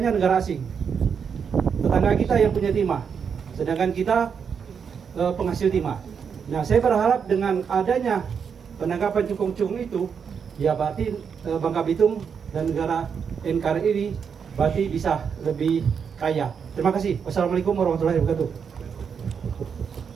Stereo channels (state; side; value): quieter; left; 6.7 dB